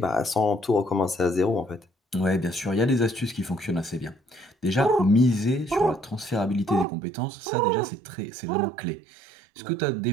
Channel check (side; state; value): left; drops out; at 6.9 s